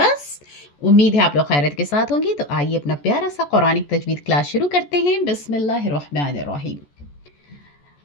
उम्मीद है आप लोग खैरियत के साथ होंगे। तो आइए अपना प्यारा सा कुरानिक तजवीद क्लास शुरू करते हैं। बिस्मिल्लाहिर्रहमानिर्रहीम।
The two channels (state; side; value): late; right; 14 ms